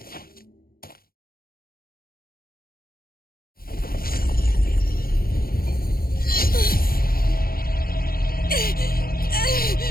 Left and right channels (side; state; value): right; late; 0.43 ms